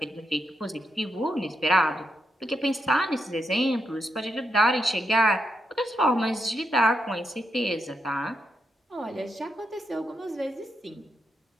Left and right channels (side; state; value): both; normal; correlation 0.84